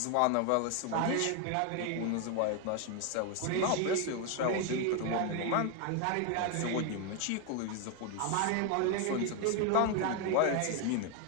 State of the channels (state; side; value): different; both; correlation 0.01